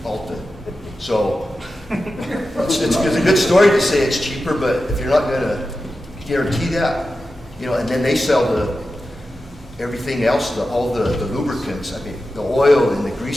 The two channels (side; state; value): both; normal; correlation 0.92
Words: Alta. So it's a good story to say it's cheaper, but if you're not going to guarantee that, you know, and then they sell everything else, all the lubricants. I mean, the oil and the